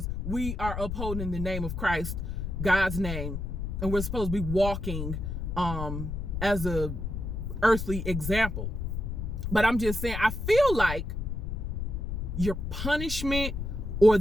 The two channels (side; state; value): left; noise; rumble, 4 dB below the sound